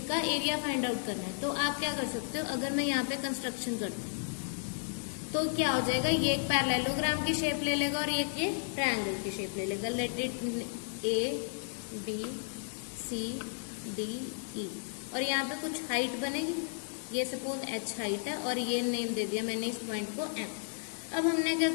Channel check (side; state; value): right; silent; digital silence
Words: का एरिया फाइंड आउट करना है, तो आप क्या कर सकते हो? अगर मैं यहाँ पे कंस्ट्रक्शन करती हूँ तो क्या हो जाएगा? ये एक पैरेललोग्राम की शेप ले लेगा और ये ट्रायंगल की शेप ले लेगा। लेट इट ABCDE, और यहाँ पे कुछ हाइट बनेगी, ये सपोज H हाइट है और ये नेम दे दिया मैंने इस पॉइंट को M। अब हमने क्या